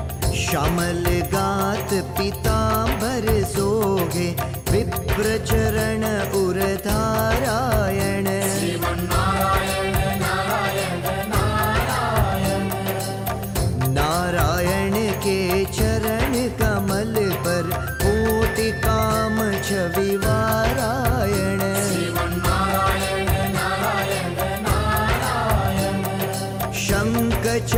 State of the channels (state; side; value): identical; both; correlation 1.00